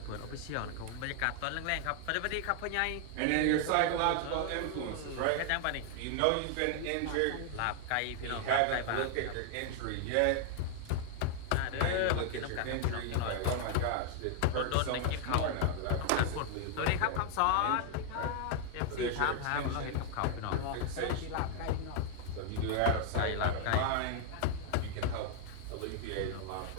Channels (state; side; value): different; both; correlation 0.00